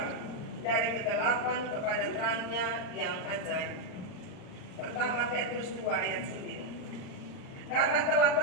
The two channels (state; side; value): late; right; 39 ms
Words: dari kegelapan kepada terang-Nya yang ajaib. Pertama Petrus 2 ayat 9. Karena telah